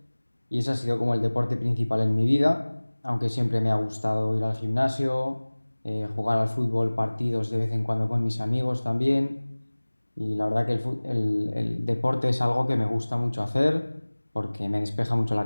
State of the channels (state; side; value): inverted; both; correlation -1.00